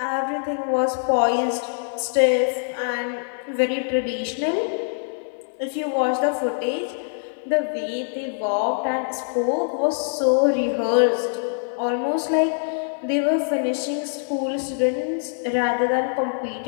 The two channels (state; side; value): silent; right; 63 dB below the other